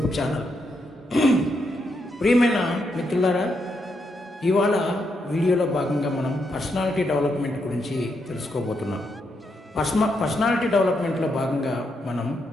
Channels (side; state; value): both; normal; correlation 0.80